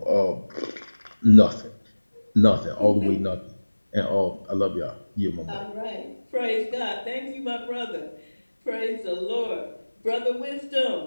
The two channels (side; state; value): both; inverted; correlation -1.00